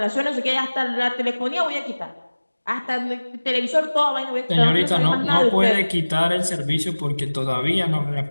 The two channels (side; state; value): both; inverted; correlation -1.00